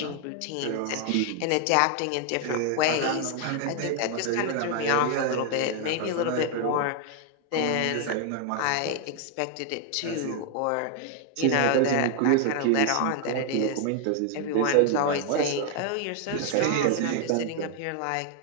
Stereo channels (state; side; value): different; both; correlation 0.00